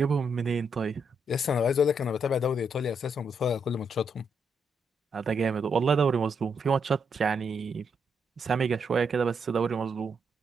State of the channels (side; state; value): both; normal; correlation 0.78